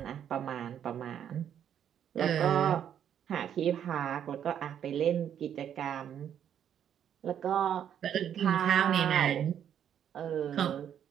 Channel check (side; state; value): left; quieter; 9.3 dB